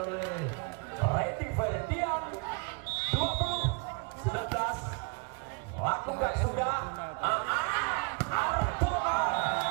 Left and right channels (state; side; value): quieter; left; 33.1 dB